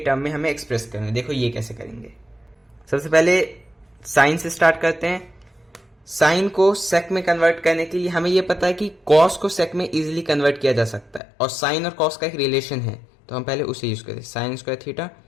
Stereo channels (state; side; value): drops out; right; at 11.2 s